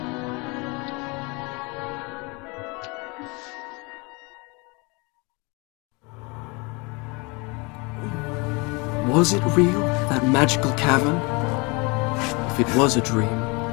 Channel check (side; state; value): right; quieter; 28.5 dB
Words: Was it real, that magical cavern? If it was a dream,